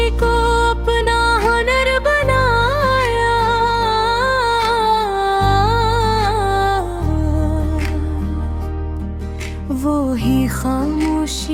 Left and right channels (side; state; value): both; identical; correlation 1.00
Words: को अपना हुनर बनाया, वो ही